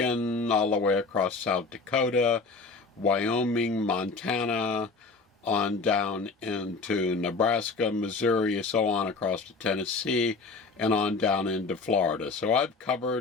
all the way across South Dakota, Wyoming, Montana, on down into Nebraska, Missouri, so on across to Tennessee, and on down into Florida. So I've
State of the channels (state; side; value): quieter; right; 4.1 dB